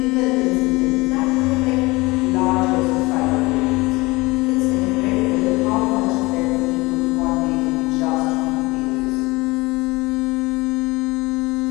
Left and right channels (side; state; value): right; quieter; 22.8 dB